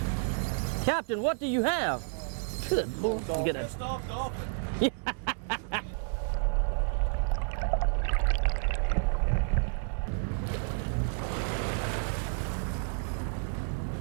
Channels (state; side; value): silent; left; digital silence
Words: Captain, what do you have? Good Lord. You get Pissed a, off dolphin.